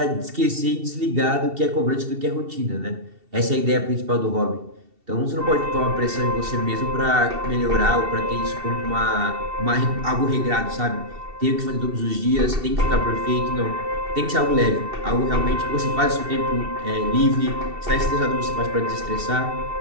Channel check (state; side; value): late; left; 2.7 ms